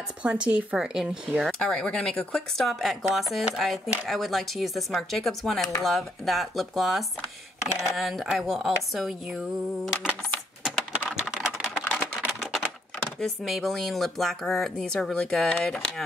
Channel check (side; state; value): both; normal; correlation 0.71